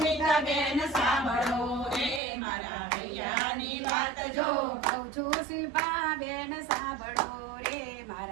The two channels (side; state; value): left; drops out; at 2.2 s